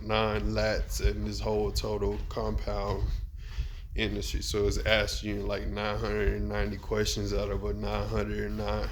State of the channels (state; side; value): identical; both; correlation 1.00